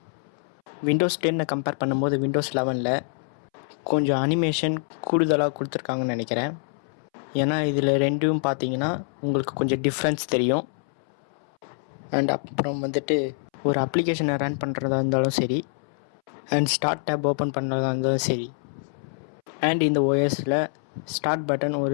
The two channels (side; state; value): right; silent; 61 dB below the other